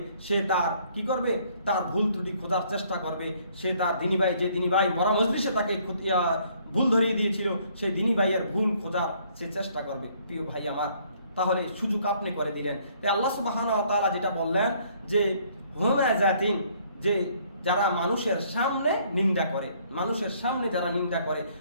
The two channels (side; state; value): both; inverted; correlation -0.63